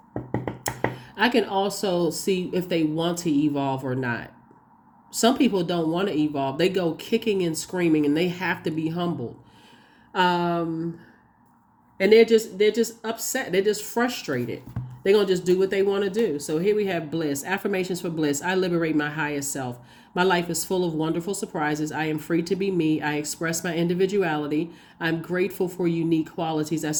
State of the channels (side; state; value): both; identical; correlation 1.00